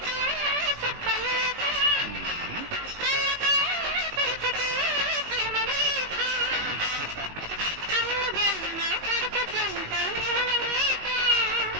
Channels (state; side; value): late; left; 19 ms